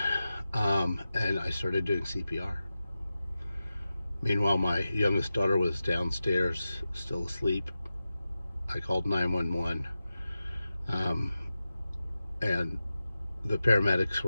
and I started doing CPR. Meanwhile, my youngest daughter was downstairs, still asleep. I called 911, and the paramedics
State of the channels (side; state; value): both; inverted; correlation -0.93